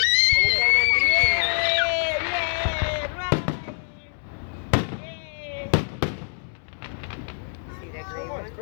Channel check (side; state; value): right; silent; 62 dB below the other